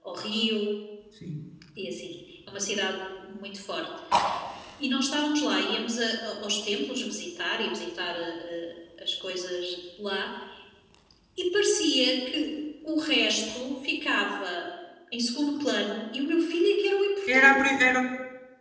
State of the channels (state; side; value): identical; both; correlation 1.00